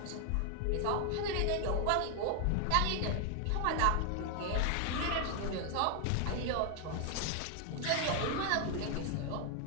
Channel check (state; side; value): different; both; correlation 0.00